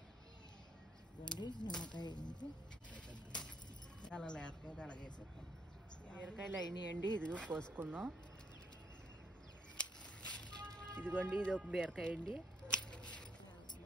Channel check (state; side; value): normal; both; correlation 0.72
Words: ఇదిగోండి నిమ్మకాయ అయింది. అలా లేకపోతే అలాగేసేస్తాను. బీరకాయలు అయినాయండి, ఇదిగో కోసుకుందాం. ఇదిగోండి ఇది ఒక బీరకాయ అండి.